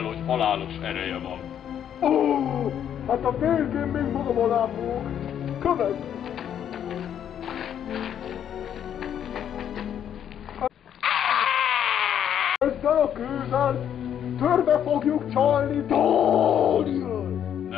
hogy halálos ereje van. Ó, hát a végén még magam alá fogok. Kövess! Ezzel a kővel törbe fogjuk csalni Daniel!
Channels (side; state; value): right; quieter; 9.4 dB